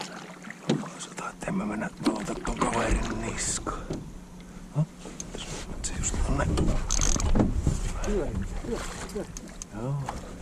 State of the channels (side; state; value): both; identical; correlation 1.00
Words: Sanotaan, että en mä mennä valota ton kaverin niskaan. Se just on näin. Joo.